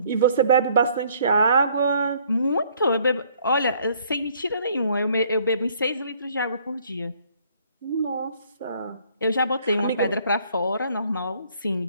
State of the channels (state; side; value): inverted; both; correlation -0.62